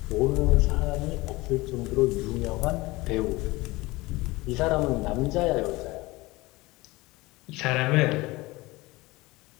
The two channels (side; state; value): right; quieter; 21.4 dB